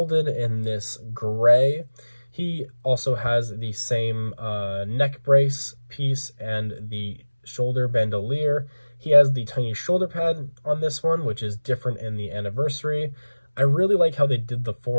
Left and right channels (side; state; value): both; inverted; correlation -1.00